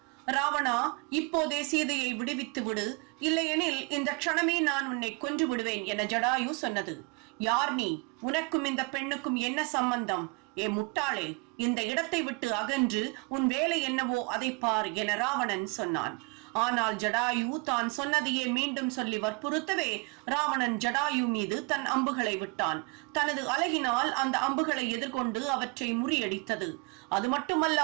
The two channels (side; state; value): left; quieter; 29.3 dB